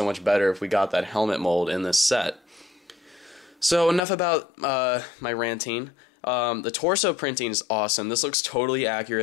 much better if we got that helmet mold in this set. So enough about my ranting. The torso printing is awesome. This looks totally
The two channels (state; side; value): drops out; right; at 4.0 s